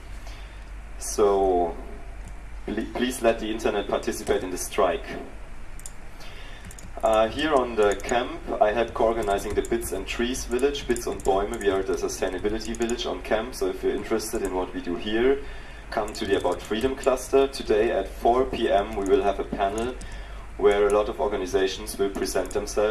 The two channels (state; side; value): identical; both; correlation 1.00